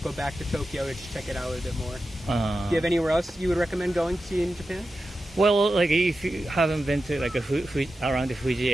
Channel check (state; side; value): normal; both; correlation 0.92